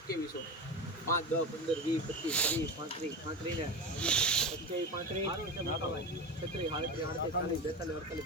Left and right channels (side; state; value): both; normal; correlation 0.24